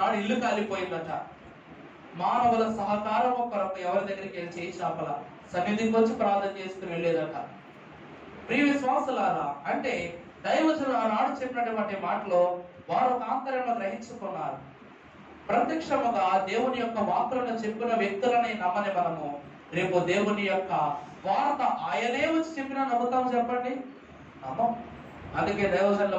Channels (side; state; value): both; identical; correlation 1.00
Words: ఇల్లు కాలిపోయిందట. మానవుల సహకారం కొరకు ఎవరి దగ్గరికి వెళ్ళి చేయి చాపల సన్నిధికి వచ్చి ప్రార్థన చేసుకుని వెళ్ళేదట. ప్రియ విశ్వాసులారా, అంటే దైవజనులు ఆనాడు చెప్పినటువంటి మాటలో వారు ఒక ఆంతర్యంలో గ్రహించుకున్నారు. ప్రత్యక్షముగా దేవుని యొక్క వాక్కులను చెప్పిన వ్యక్తులని నమ్మని మనము రేపు దేవుని యొక్క వార్త ఆయనే వచ్చి చెప్పినా నమ్ముతాం చెప్పండి? నమ్మం. అందుకే దైవజనుల